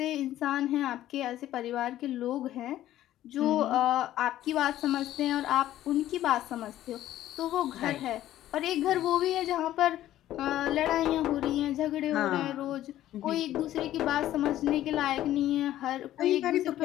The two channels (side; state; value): right; quieter; 13.4 dB